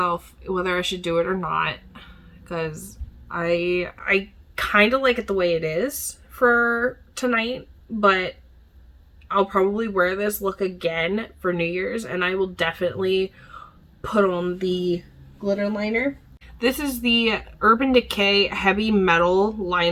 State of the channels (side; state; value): both; identical; correlation 1.00